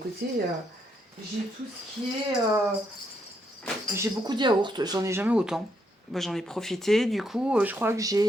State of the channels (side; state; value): both; normal; correlation 0.76